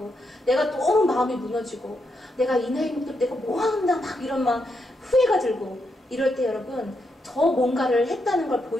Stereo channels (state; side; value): normal; both; correlation 0.82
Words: 내가 너무 마음이 무너지고 내가 이 나이 먹도 내가 뭐 한다 막 이런 막 후회가 들고 이럴 때 여러분 더 뭔가를 했다는 걸